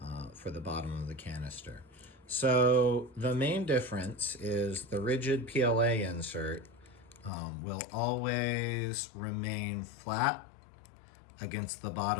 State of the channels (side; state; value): right; drops out; at 7.3 s